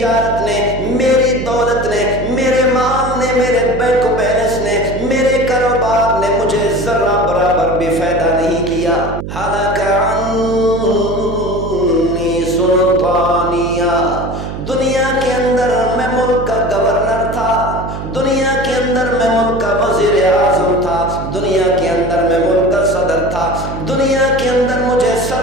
نے، میری دولت نے، میرے مال نے، میرے بینک بیلنس نے، میرے کاروبار نے مجھے ذرہ برابر بھی فائدہ نہیں کیا۔ حالانکہ سلطانیہ، دنیا کے اندر میں ملک کا گورنر تھا، دنیا کے اندر میں ملک کا وزیر اعظم تھا، دنیا کے اندر میں ملک کا صدر تھا، دنیا کے اندر مجھے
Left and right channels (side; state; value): right; noise; hum, 8 dB below the sound